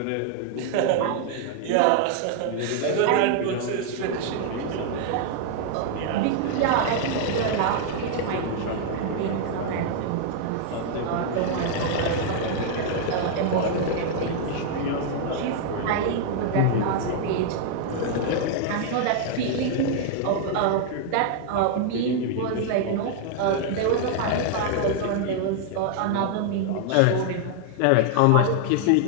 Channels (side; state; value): both; different; correlation 0.00